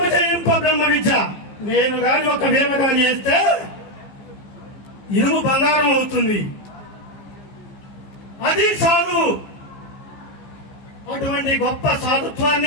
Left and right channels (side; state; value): right; late; 15 ms